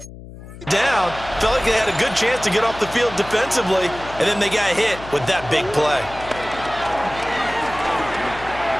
Down, felt like they had a good chance to get off the field defensively, and then they got hit with that big play.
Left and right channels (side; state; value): left; noise; hum, 15 dB below the sound